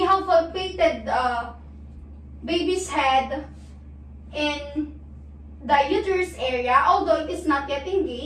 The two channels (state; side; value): identical; both; correlation 1.00